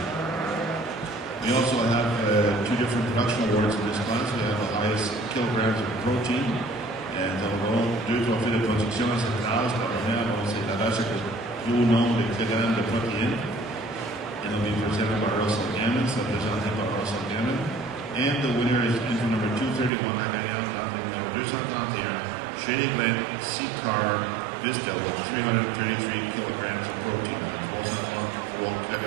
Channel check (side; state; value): left; drops out; at 19.9 s